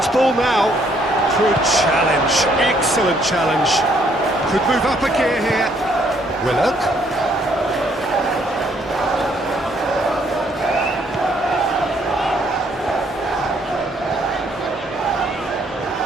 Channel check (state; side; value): normal; both; correlation 0.67